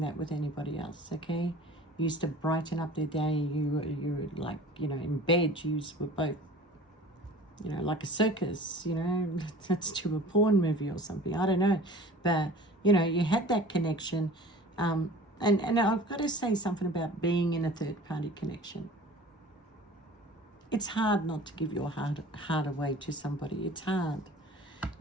that with anybody else, okay? You used to brighten up their day. You were like, you know, in bed. You were both, you know, like a circus, you know. Let's do a porn movie or something. I don't know. But, you know, you had that connection. And I've got to say something about being in a third-party connection. It's hard not to give your heart away to somebody. It's hard.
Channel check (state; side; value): normal; both; correlation 0.43